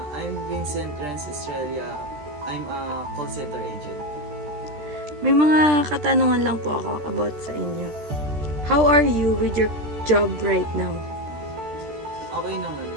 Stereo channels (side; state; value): left; late; 13 ms